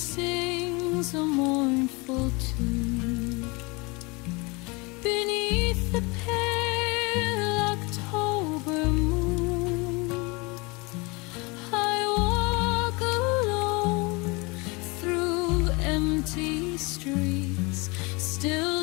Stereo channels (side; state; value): right; quieter; 27.0 dB